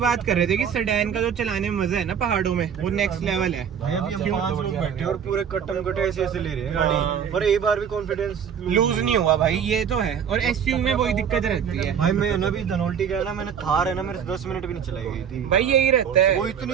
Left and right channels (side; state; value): left; quieter; 7.9 dB